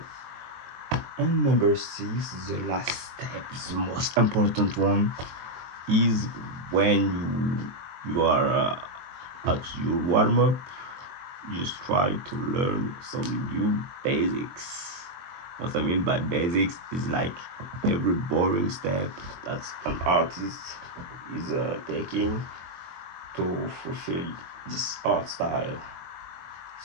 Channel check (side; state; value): left; late; 23 ms